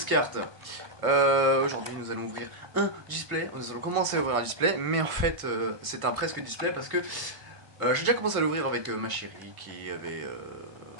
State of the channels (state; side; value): late; left; 1.2 ms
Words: cartes. Aujourd'hui nous allons ouvrir un display, nous allons commencer à ouvrir un display, mais en fait c'est un presque display parce que j'ai déjà commencé à l'ouvrir avec ma chérie qui avait